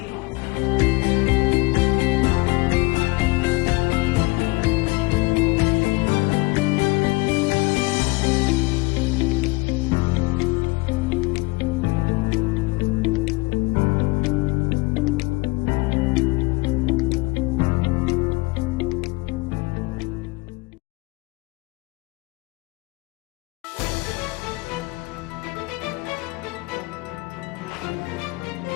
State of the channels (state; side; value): quieter; right; 23.7 dB